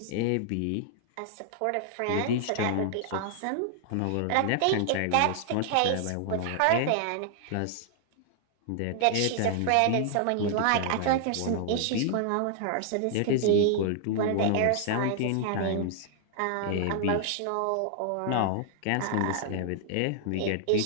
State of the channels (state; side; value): different; both; correlation 0.00